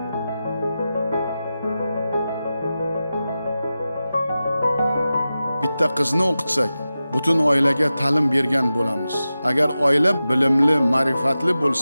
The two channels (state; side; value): inverted; both; correlation -0.93